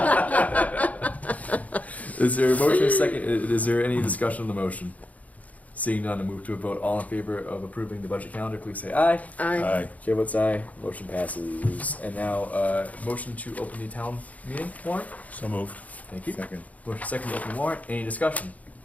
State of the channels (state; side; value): late; right; 0.072 ms